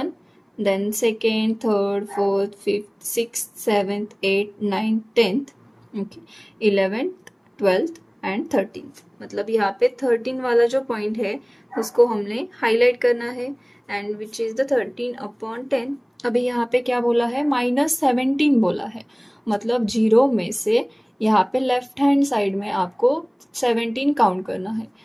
then second, third, fourth, fifth, sixth, seventh, 8 9 10th, okay, 11th 12th and 13th। मतलब यहाँ पे 13 वाला जो पॉइंट है उसको हमने हाईलाइट करना है एंड विच इज़ द 13/10। अभी यहाँ पे क्या बोला है, -17 बोला है, मतलब 0 में से यहाँ पे लेफ्ट हैंड साइड में आपको 17 काउंट करना है।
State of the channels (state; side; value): identical; both; correlation 1.00